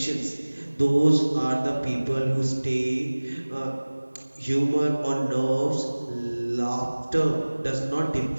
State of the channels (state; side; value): inverted; both; correlation -1.00